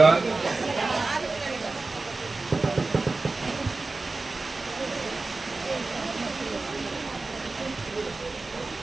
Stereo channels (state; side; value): quieter; left; 3.5 dB